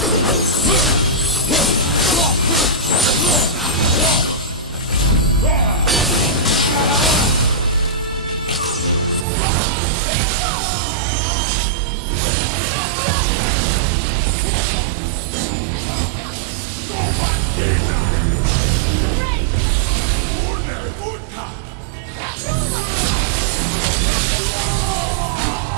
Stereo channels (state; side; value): drops out; left; at 9.2 s